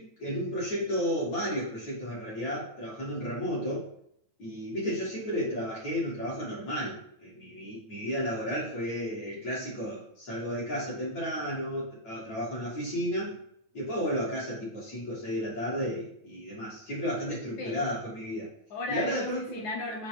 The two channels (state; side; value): late; right; 9.1 ms